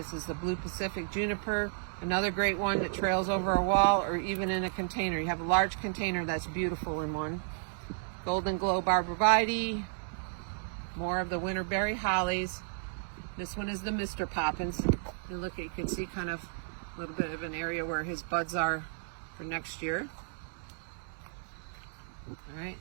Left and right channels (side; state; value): left; silent; digital silence